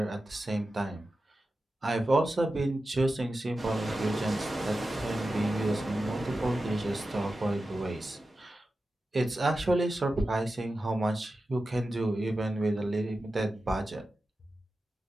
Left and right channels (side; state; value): both; normal; correlation 0.93